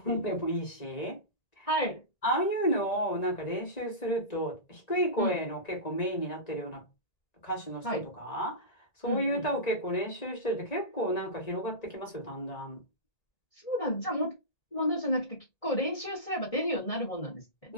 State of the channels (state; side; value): late; right; 1.9 ms